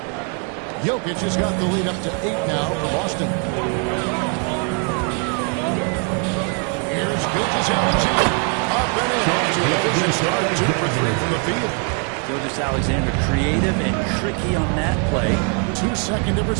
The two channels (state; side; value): quieter; left; 38.8 dB